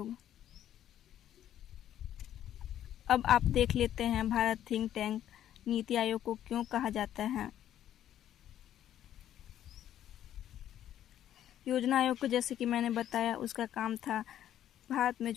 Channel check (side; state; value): right; quieter; 11.2 dB